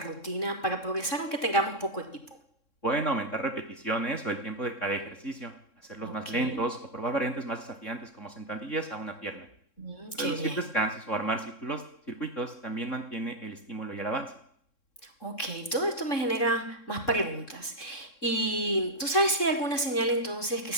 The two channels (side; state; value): right; late; 3.7 ms